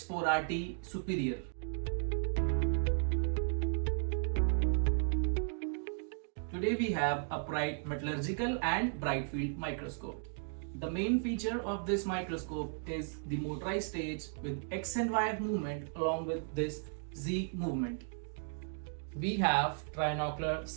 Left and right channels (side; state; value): left; silent; digital silence